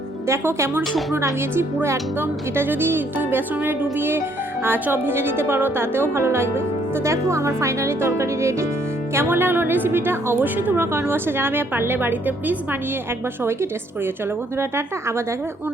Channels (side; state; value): both; normal; correlation 0.67